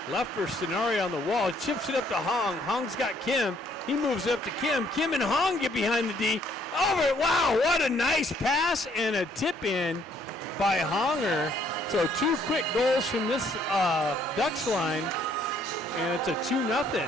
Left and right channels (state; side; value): normal; both; correlation 0.65